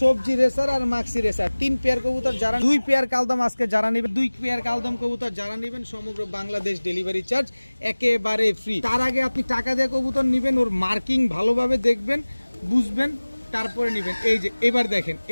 সবজি রেসার আর মাক্সি রেসার 3 পেয়ার কবুতর যারা 2 পেয়ার কালদম আজকে যারা নেবেন 2 পেয়ার কালদম কবুতর যারা নেবেন সমগ্র বাংলাদেশ ডেলিভারি চার্জ একেবারে ফ্রি। তার আগে আপনি টাকা দিয়ে কবুতর নেবেন, ওর মার্কিং ভালোভাবে দেখবেন, বুঝবেন, তারপরে নেবেন। এই যে এবার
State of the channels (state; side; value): inverted; both; correlation -1.00